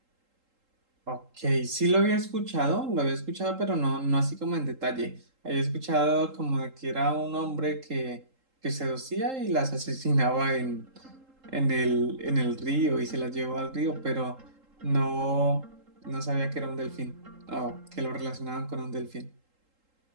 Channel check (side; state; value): left; late; 3.8 ms